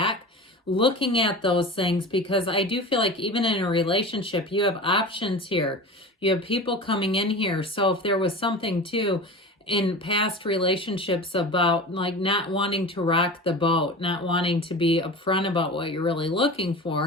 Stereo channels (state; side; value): normal; both; correlation 0.33